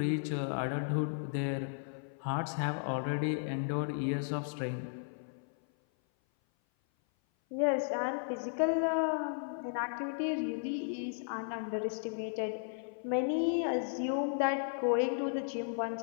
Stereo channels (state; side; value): silent; right; 55 dB below the other